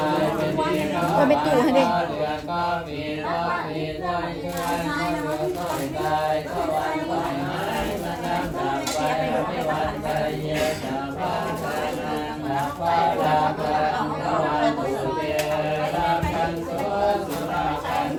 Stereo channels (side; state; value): both; identical; correlation 1.00